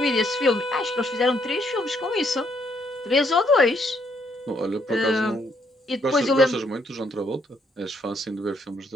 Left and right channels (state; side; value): normal; both; correlation 0.71